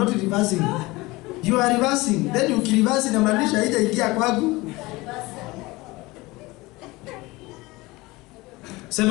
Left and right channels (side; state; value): right; quieter; 21.6 dB